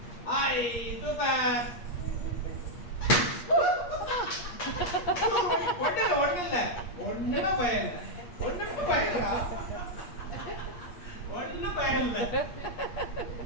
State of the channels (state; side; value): late; right; 8.4 ms